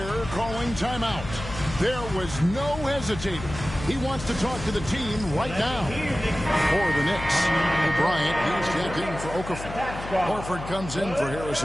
calling timeout. There was no hesitating. He wants to talk to the team right now. For the Knicks, Bryant, he's checked in for Okafor. Horford comes in for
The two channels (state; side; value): noise; left; hum, 10 dB below the sound